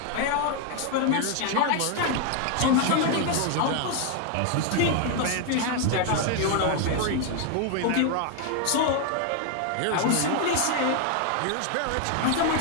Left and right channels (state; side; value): different; both; correlation 0.00